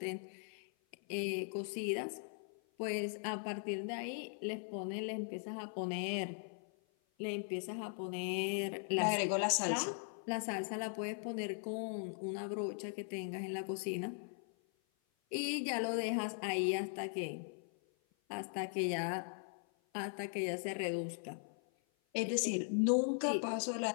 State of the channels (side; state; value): right; silent; 51 dB below the other